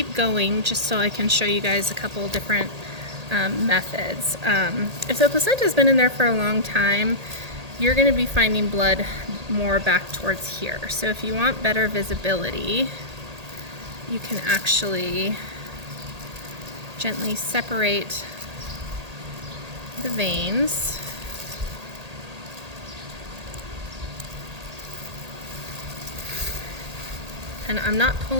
going just so I can show you guys a couple different methods. If the placenta has been in there for a long time, you're going to be finding blood more back towards here. So if you want better visibility, you can actually gently separate the veins. And I'm not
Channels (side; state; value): left; late; 1.8 ms